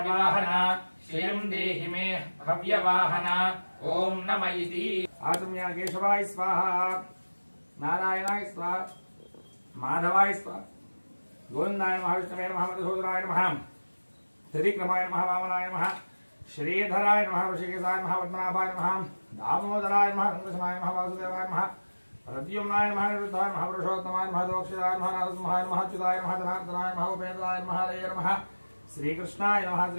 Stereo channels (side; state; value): both; inverted; correlation -1.00